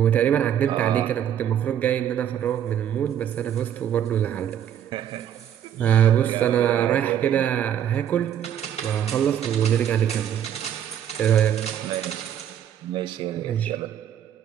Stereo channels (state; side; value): quieter; left; 9.9 dB